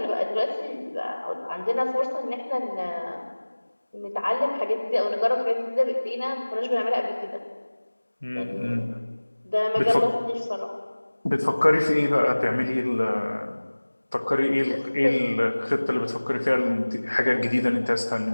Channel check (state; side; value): inverted; both; correlation -1.00